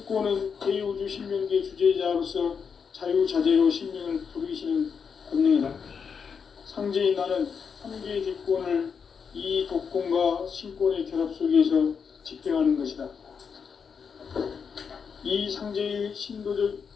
대우주 신명계 주제자로서 자유자재로 신명을 부르시는 권능이다. 상제인 나는 삼계의 뒷권을 이 독권과 신권의 결합 속에서 집행하는 것이다. 이 상제의 신도적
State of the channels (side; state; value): right; quieter; 6.3 dB